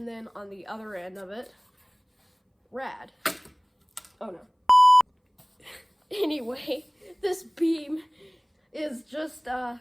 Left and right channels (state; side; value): identical; both; correlation 1.00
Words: then on the other end of it, rad. Oh no. Anyway, this beam is just to